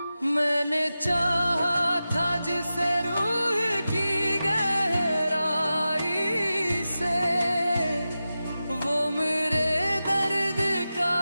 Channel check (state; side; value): inverted; both; correlation -0.93